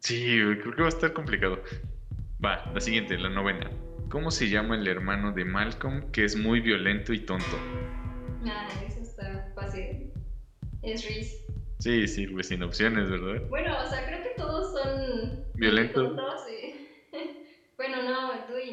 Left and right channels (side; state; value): both; identical; correlation 1.00